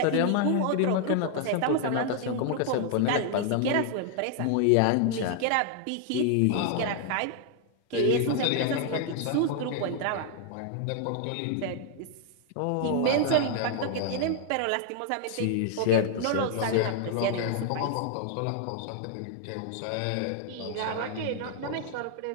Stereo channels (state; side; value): different; both; correlation 0.00